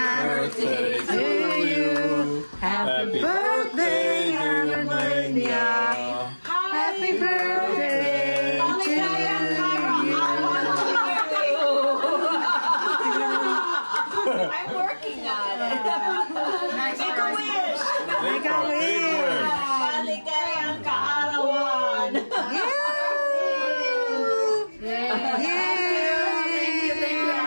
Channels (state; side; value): inverted; both; correlation -1.00